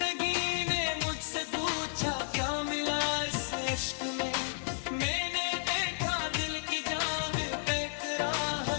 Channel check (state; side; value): silent; right; digital silence